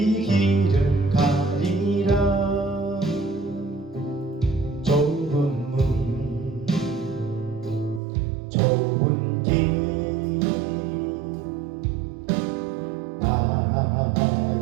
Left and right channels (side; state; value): left; drops out; at 8.0 s